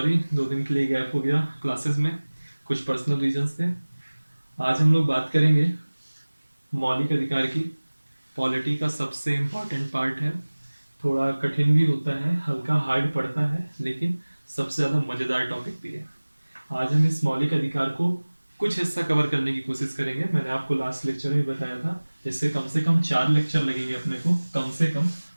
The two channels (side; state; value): both; inverted; correlation -1.00